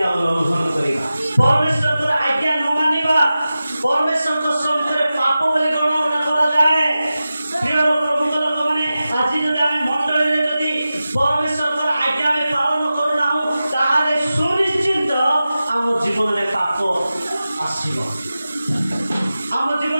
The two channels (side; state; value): both; inverted; correlation -0.94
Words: ଉଲ୍ଲଂଘନ କରିବା, ପରମେଶ୍ୱରଙ୍କର ଆଜ୍ଞା ନ ମାନିବା, ପରମେଶ୍ୱରଙ୍କ ସମ୍ମୁଖରେ ପାପ ବୋଲି ଗଣନା କରାଯାଏ। ପ୍ରିୟ ପ୍ରଭୁଙ୍କ ଲୋକମାନେ ଆଜି ଯଦି ଆମେ ମଣ୍ଡଳୀରେ ଯଦି ପରମେଶ୍ୱରଙ୍କର ଆଜ୍ଞା ଆମେ ପାଳନ କରୁନାହୁଁ ତାହେଲେ ସୁନିଶ୍ଚିତ ଆମ ଜୀବନରେ ପାପ ଆସିବ, ଆମ